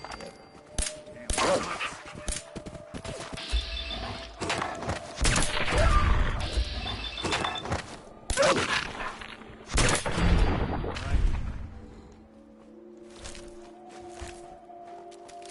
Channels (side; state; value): both; identical; correlation 1.00